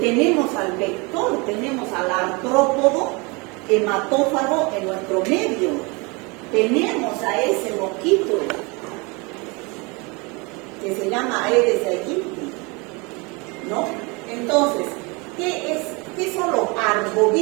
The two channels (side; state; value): left; quieter; 28.2 dB